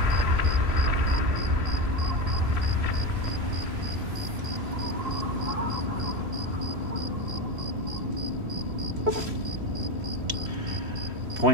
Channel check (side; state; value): left; late; 3.1 ms